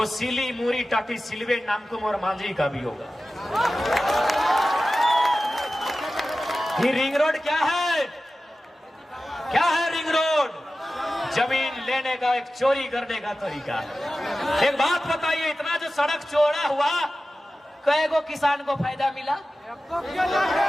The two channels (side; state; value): both; normal; correlation 0.95